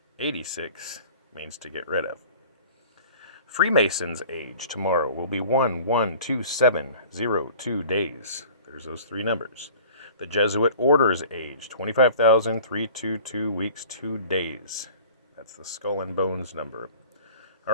86 means to get rid of. Freemasons' age tomorrow will be 1/1/2702 days. There's those three numbers. The Jesuit Order's age, 25,322 weeks, 2 days. That's the skull and bones number. All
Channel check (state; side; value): inverted; both; correlation -0.45